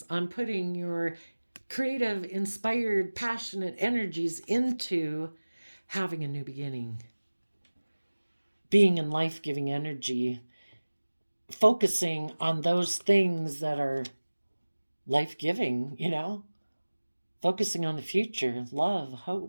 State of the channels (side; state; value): both; inverted; correlation -1.00